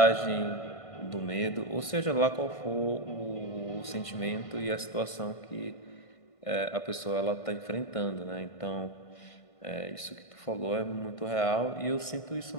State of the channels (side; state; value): right; late; 1.5 ms